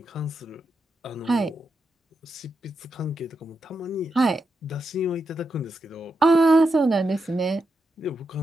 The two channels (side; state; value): both; normal; correlation 0.86